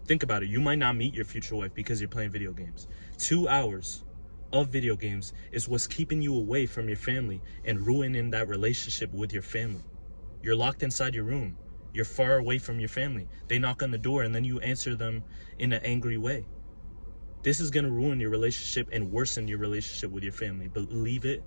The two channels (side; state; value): both; inverted; correlation -1.00